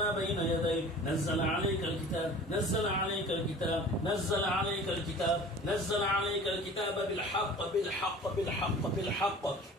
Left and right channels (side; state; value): both; normal; correlation 0.43